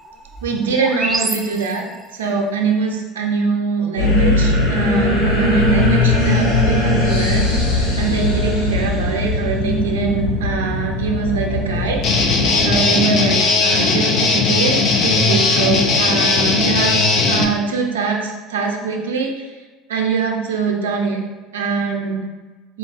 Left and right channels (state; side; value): normal; both; correlation 0.23